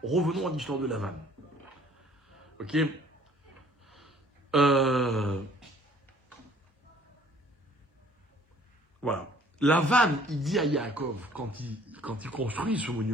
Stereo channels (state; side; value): normal; both; correlation 0.56